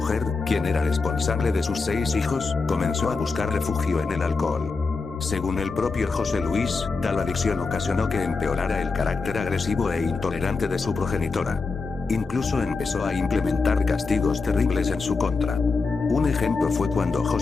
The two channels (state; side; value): quieter; right; 4.3 dB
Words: quien era responsable de sus 6 hijos, comenzó a buscar refugio en el alcohol. Según el propio José Luis, tal adicción ocasionó que empeorara el carácter agresivo e intolerante de su progenitora. Incluso empezó a implementar castigos terribles en su contra. Un ejemplo fue cuando